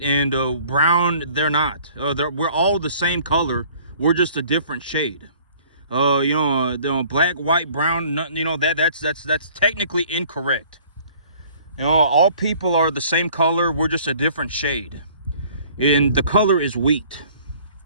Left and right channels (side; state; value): both; inverted; correlation -0.54